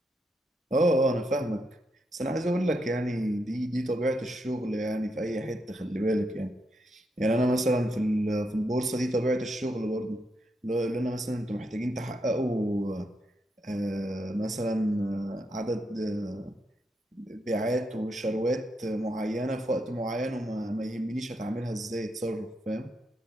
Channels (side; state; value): both; normal; correlation 0.81